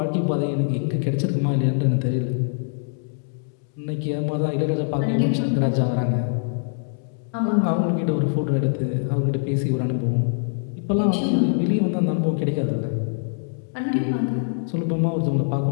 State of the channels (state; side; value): silent; right; digital silence